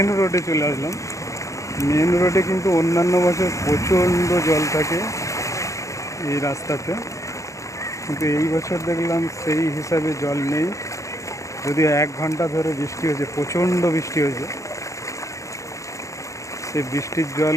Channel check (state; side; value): late; right; 0.15 ms